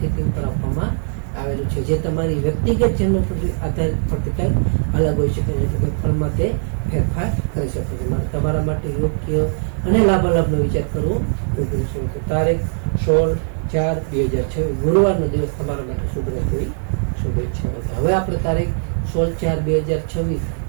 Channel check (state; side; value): silent; left; digital silence